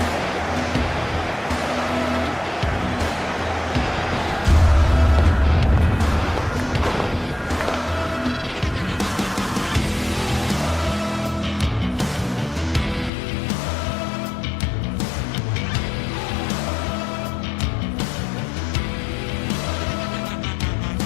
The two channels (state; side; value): drops out; right; at 13.1 s